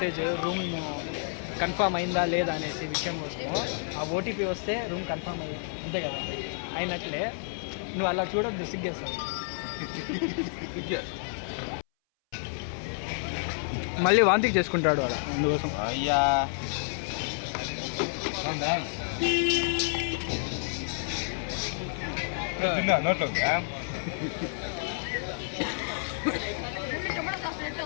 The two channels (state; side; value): silent; right; 58 dB below the other